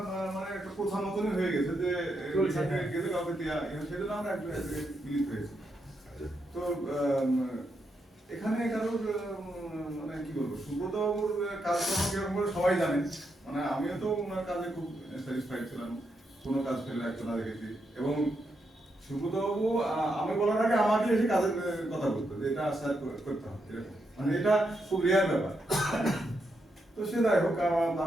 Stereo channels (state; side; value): normal; both; correlation 0.82